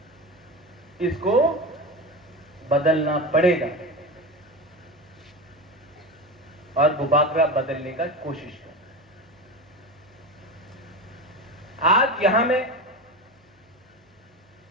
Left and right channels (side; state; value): both; normal; correlation 0.24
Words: इसको बदलना पड़ेगा और बुबागरा बदलने का कोशिश कर। आज यहां में